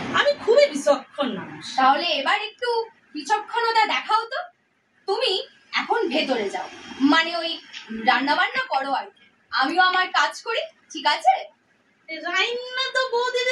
আমি খুবই বিচক্ষণ মানুষ। তাহলে এবার একটু বিচক্ষণতা দেখাও তো। তুমি এখন ভেতরে যাও, মানে ওই রান্না বান্না করো আর কি, আমিও আমার কাজ করি, ঠিক আছে? রান্না তো বৌদির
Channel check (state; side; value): identical; both; correlation 1.00